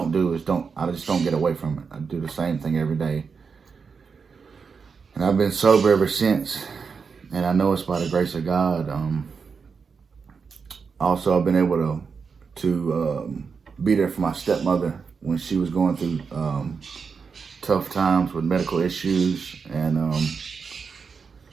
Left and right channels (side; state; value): left; quieter; 5.5 dB